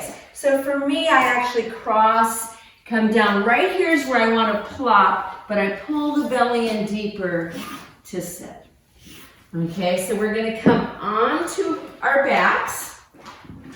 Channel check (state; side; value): identical; both; correlation 1.00